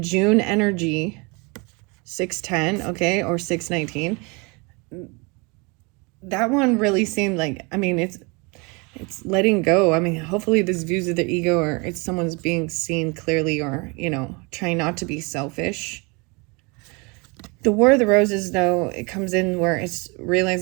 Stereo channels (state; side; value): quieter; left; 29.3 dB